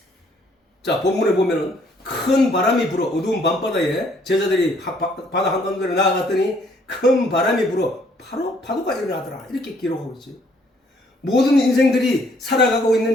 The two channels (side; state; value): both; normal; correlation 0.64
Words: 자, 본문에 보면은 큰 바람이 불어 어두운 밤바다에 제자들이 바다 한가운데로 나아갔더니 큰 바람이 불어 바로 파도가 일어나더라. 이렇게 기록하고 있지. 모든 인생들이 살아가고